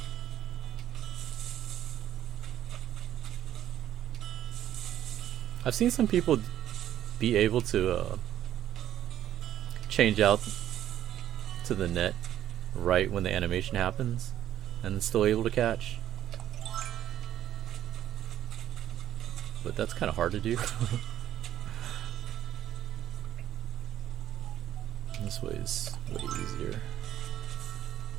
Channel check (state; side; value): quieter; left; 11.7 dB